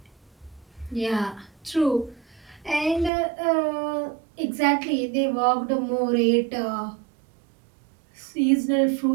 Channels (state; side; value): drops out; left; at 3.1 s